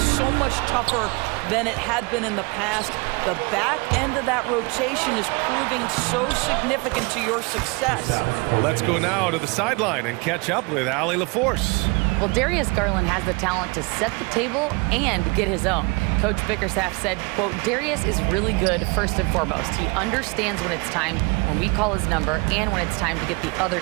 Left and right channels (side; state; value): left; quieter; 28.7 dB